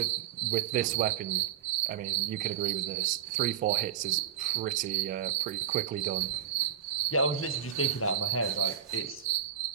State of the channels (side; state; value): left; quieter; 9.2 dB